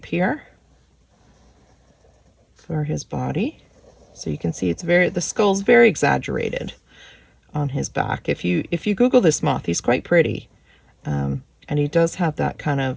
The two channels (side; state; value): both; identical; correlation 1.00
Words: here for his body. So you can see it's the skull's very exaggerated on his back. If you Google this moth, he's quite pretty. And he does have that kind of